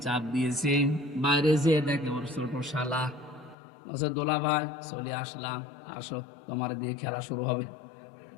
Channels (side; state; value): right; drops out; at 3.6 s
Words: চাপ দিয়েছে, বাইরে যেয়ে দেখে ওর ছোট শালা। বলছে দোলা ভাই চলে আসলাম, আসো তোমার দিয়ে খেলা শুরু হবে।